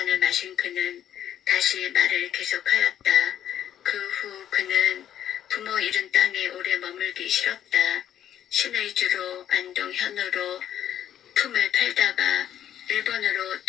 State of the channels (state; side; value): quieter; right; 10.6 dB